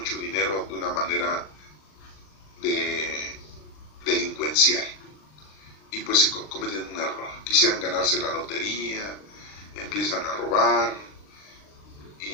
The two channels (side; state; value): right; late; 39 ms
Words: dinero de una manera delincuencial? Y pues se cometen un error. Quisieran ganarse la lotería, empiezan a robar,